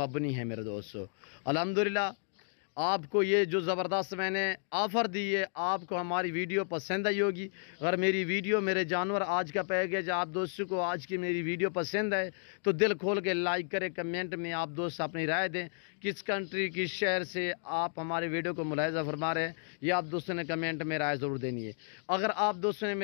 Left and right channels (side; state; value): right; silent; digital silence